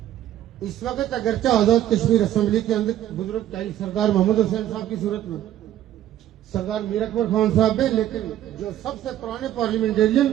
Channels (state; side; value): quieter; left; 12.2 dB